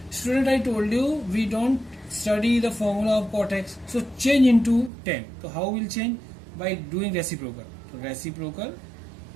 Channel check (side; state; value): left; drops out; at 4.9 s